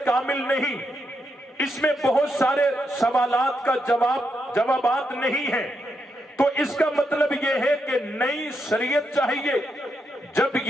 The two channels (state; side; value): normal; both; correlation 0.82